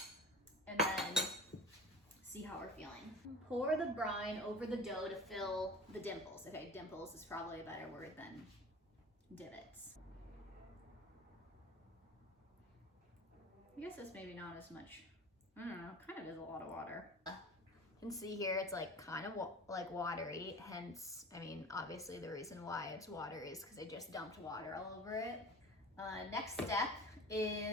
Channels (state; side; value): normal; both; correlation 0.38